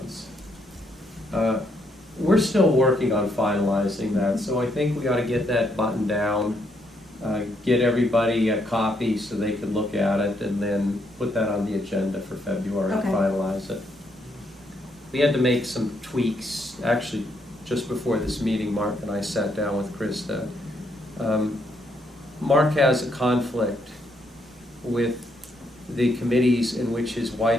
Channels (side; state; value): both; normal; correlation 0.75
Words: We're still working on finalizing that, so I think we ought to get that buttoned down, get everybody a copy so they can look at it, and then put that on the agenda for February to Okay. finalize it. We had to make some tweaks, actually, just before this meeting, Mark and I sat down with Krista. Mark has a conflict with the committees in which his